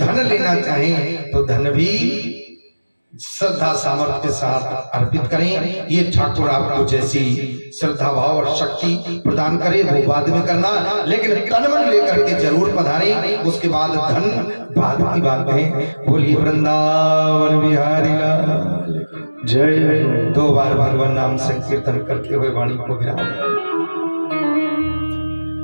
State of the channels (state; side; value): inverted; both; correlation -1.00